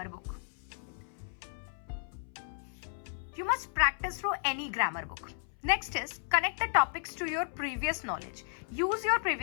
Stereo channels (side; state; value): right; silent; 55 dB below the other